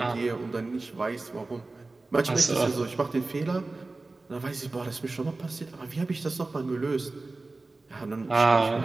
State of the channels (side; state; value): left; quieter; 3.3 dB